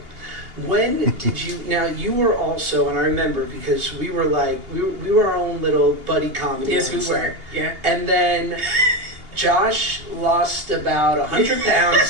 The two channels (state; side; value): late; left; 2.8 ms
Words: When did you, now you were also, and I remember because we were like, we were our own little buddy comedy. Yes, we on were, set. yeah. And then Josh lost about 100